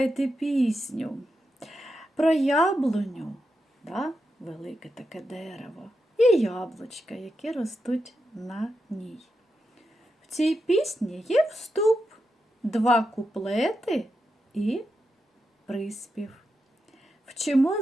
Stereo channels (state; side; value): normal; both; correlation 0.87